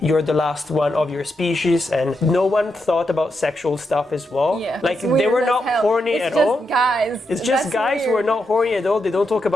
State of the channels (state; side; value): normal; both; correlation 0.84